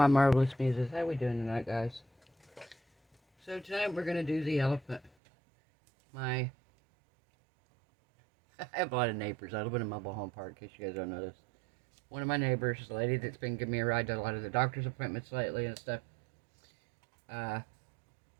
marvelous muses. How we doing tonight, guys? So tonight we're gonna do the elephant. I have a lot of neighbors. I live in a mobile home park, in case you guys don't know this. One of my neighbors, the lady that's been giving me a ride to a lot of the doctor's appointments lately and stuff.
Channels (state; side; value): drops out; left; at 5.1 s